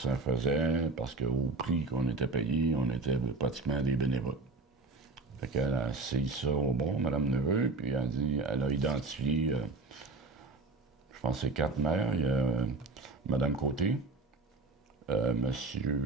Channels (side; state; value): left; quieter; 3.6 dB